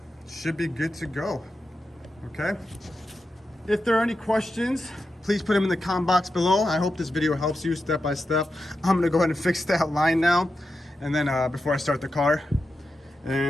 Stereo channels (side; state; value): both; normal; correlation 0.89